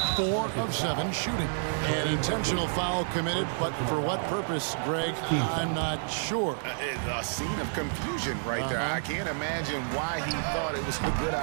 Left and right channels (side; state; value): left; silent; digital silence